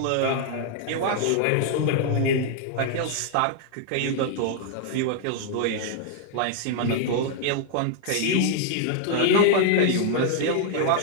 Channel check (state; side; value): different; both; correlation 0.00